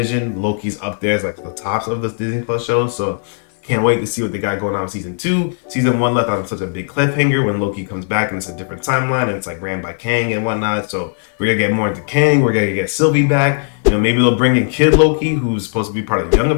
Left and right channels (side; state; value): right; silent; digital silence